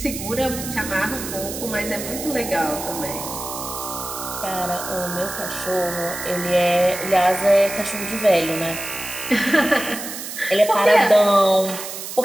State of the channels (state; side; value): noise; right; hiss, 8 dB below the sound